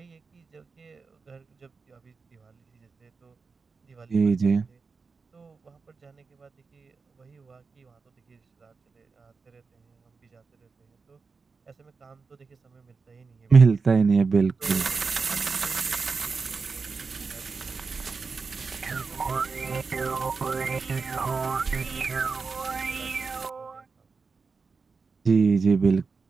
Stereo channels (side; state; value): left; quieter; 4.7 dB